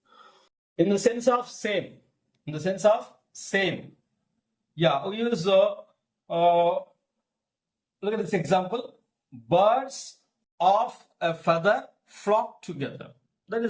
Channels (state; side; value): identical; both; correlation 1.00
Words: In the sense of same. In the sense of same. Yeah, we use, look at this example. Birds of a feather flock together. That